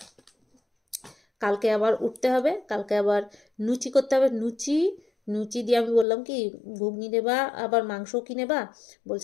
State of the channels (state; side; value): drops out; right; at 6.1 s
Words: কালকে আবার উঠতে হবে, কালকে আবার লুচি করতে হবে। লুচি দিয়ে আমি বললাম কি ঘুগনি নেবা, আবার মাংসও কি নেবা?